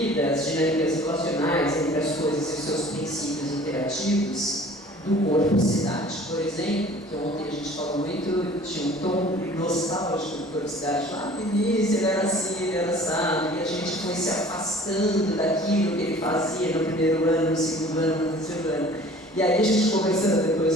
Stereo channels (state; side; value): normal; both; correlation 0.48